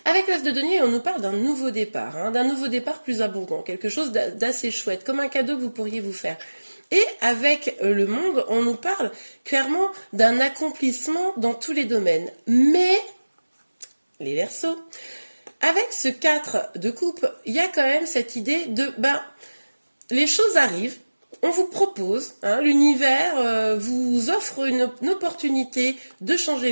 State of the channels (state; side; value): inverted; both; correlation -1.00